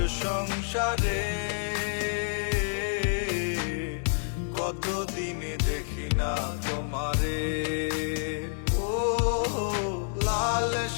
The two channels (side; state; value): right; silent; digital silence